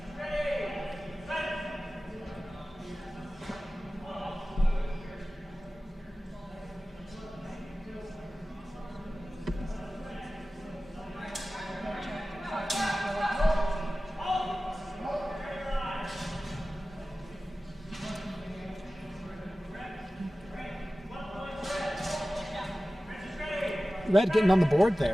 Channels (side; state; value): both; normal; correlation 0.96